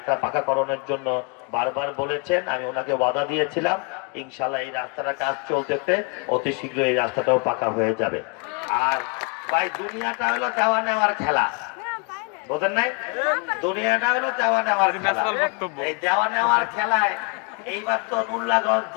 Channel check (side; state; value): right; quieter; 34.6 dB